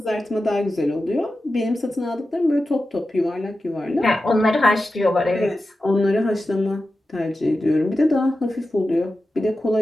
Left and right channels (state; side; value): normal; both; correlation 0.92